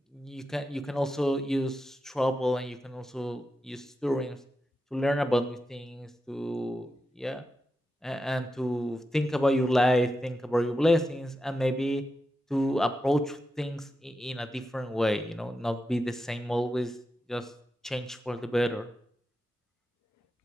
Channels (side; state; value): both; normal; correlation 0.89